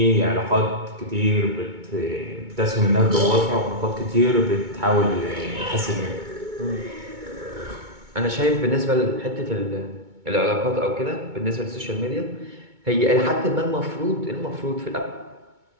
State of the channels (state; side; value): late; left; 2.2 ms